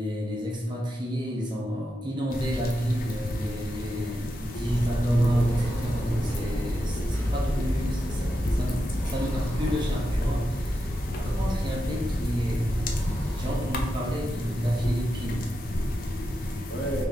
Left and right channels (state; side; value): normal; both; correlation 0.87